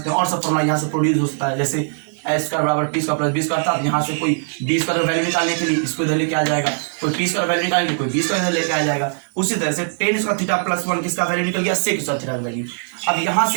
हैं, और सब फॉर्मूला यहाँ से प्रोड्यूस होता है, जैसे एस स्क्वायर बराबर T square plus B square था, यहाँ से कोई बी स्क्वायर वैल्यू निकालने के लिए इसको इधर लेके आ जाएगा, कोई टी स्क्वायर वैल्यू निकालने के लिए कोई बी स्क्वायर इधर लेके आ जाएगा। उसी तरह से टेन स्क्वायर थीटा प्लस 1 किसका वैल्यू निकल गया, सेक स्क्वायर थीटा का वैल्यू। अब यहाँ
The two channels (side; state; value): left; silent; digital silence